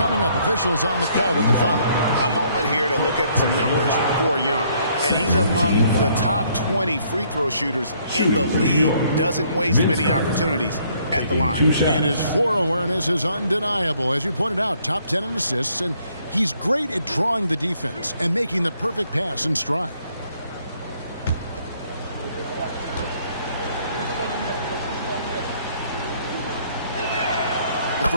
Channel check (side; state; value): both; inverted; correlation -0.66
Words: up. Officials on the call with the foul. A moment here to look at some numbers for Young. And he's among the top 20 free throw shooters in the league. Doesn't waste many opportunities at the line. And his floor awareness is undeniable. As you pointed out, top 10 in assists. And he's great at drawing the defense and making the perfect pass in stride.